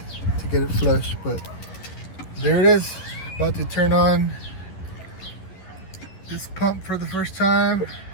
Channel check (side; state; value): right; late; 11 ms